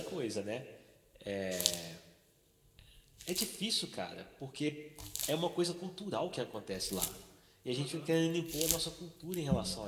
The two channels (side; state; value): both; identical; correlation 1.00